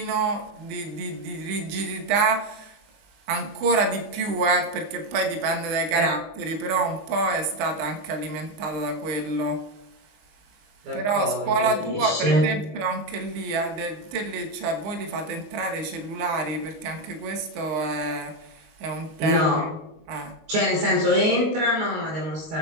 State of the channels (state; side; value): late; left; 20 ms